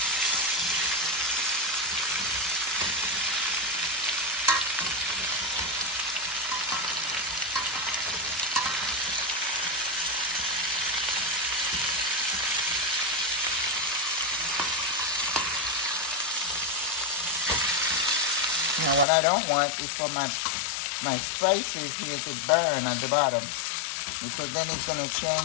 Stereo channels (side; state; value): right; drops out; at 19.1 s